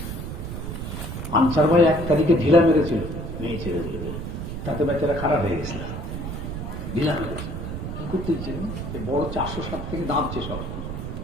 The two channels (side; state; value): right; noise; rumble, 6 dB below the sound